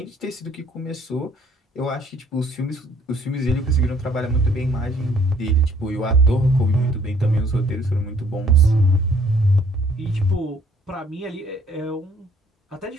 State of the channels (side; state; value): both; normal; correlation 0.60